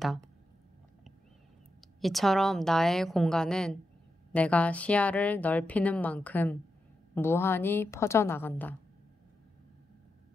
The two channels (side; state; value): both; normal; correlation 0.87